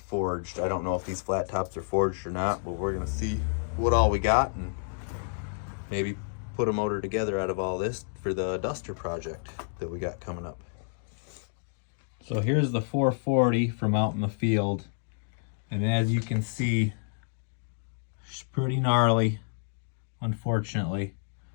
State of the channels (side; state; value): right; silent; digital silence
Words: I don't know if these flat tops are forged or not, but we're gonna see what all we got and maybe put a motor together out of all this for the Duster project that we got coming up. So here's the 440 from out in the field, and as you can see, it's pretty gnarly, unfortunately.